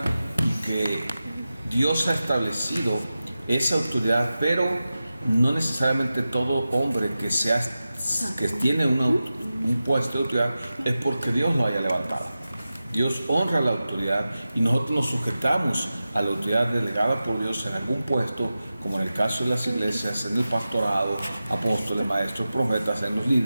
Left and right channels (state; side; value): inverted; both; correlation -0.94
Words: y que Dios ha establecido esa autoridad, pero no necesariamente todo hombre que tiene un puesto de autoridad es porque Dios lo haya levantado. Dios honra la autoridad y nosotros nos sujetamos a la autoridad delegada por Dios en algún puesto, como en el caso de las iglesias, en el pastorado, apóstoles, maestros, profetas, en los